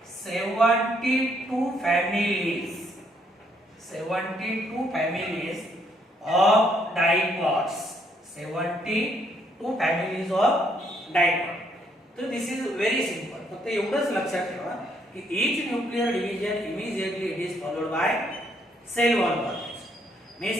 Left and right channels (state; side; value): normal; both; correlation 0.70